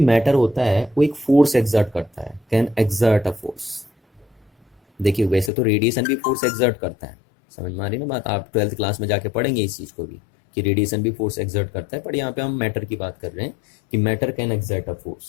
मैटर होता है वो एक फोर्स एक्सर्ट करता है, कैन एक्सर्ट अ फोर्स। देखिए वैसे तो रेडिएशन भी फोर्स एक्सर्ट करता है, समझ में आ रही ना बात। आप 12th क्लास में जाके पढ़ेंगे इस चीज़ को भी कि रेडिएशन भी फोर्स एक्सर्ट करता है, पर यहाँ पे हम मैटर की बात कर रहे हैं कि matter can exert a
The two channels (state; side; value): drops out; right; at 5.5 s